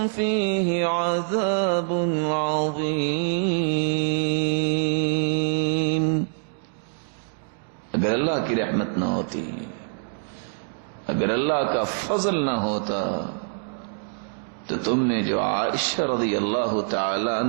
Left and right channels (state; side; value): silent; left; digital silence